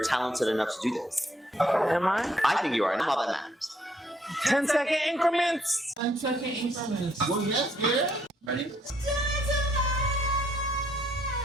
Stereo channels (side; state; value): both; normal; correlation 0.69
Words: talented enough to do this. Am I? I think you are, and all that matters. 10-second increments. 10-second increments. Well, yes, girl. Ready?